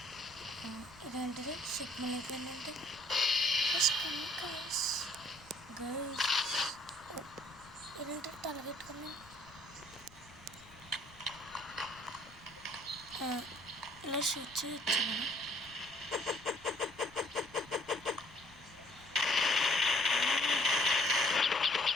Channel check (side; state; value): left; noise; rumble, 24 dB below the sound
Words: ఇదేంటిది సిగ్నల్ అయిపోయిందంటే గైస్ గైస్ ఇదేంటి తలగెట్టుకున్నాను. ఇలా షూట్ చేయొచ్చు మనం.